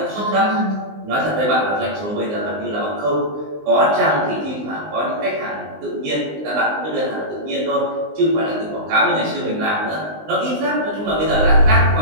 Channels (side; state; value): left; late; 19 ms